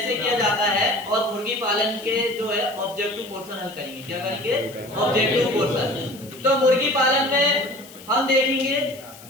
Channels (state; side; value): noise; left; hiss, 20 dB below the sound